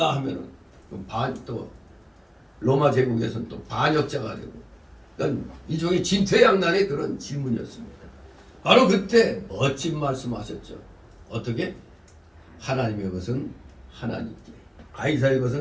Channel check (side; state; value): both; identical; correlation 1.00